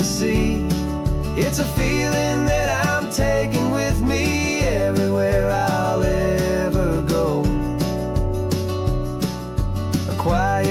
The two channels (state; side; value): identical; both; correlation 1.00